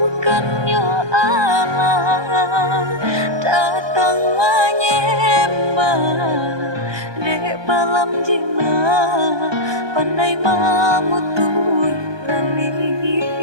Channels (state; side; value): late; left; 1.2 ms